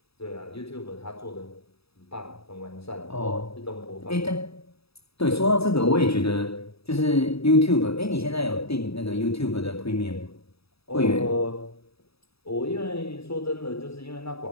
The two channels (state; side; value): late; right; 0.77 ms